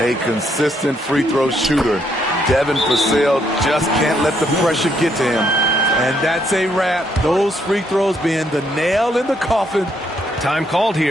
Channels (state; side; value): normal; both; correlation 0.73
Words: consistent free throw shooter. Devin Vassell just can't let the pressure get to him. And that's a wrap. Those free throws being the nail in the coffin. Time called